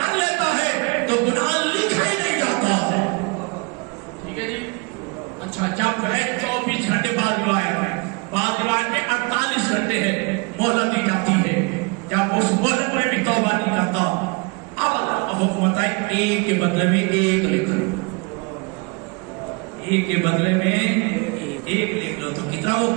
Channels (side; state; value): left; quieter; 30.7 dB